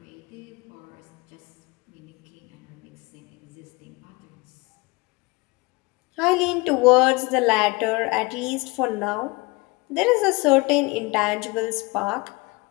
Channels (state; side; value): quieter; right; 25.4 dB